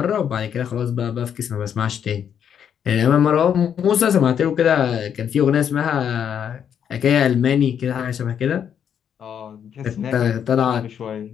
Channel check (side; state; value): right; quieter; 8.4 dB